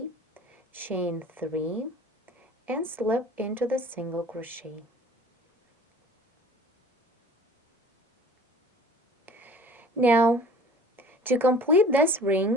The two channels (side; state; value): both; normal; correlation 0.46